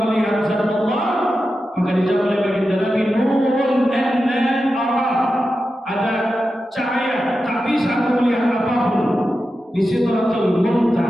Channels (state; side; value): normal; both; correlation 0.91